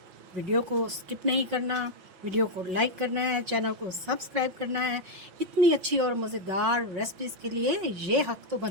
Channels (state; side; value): late; left; 5.9 ms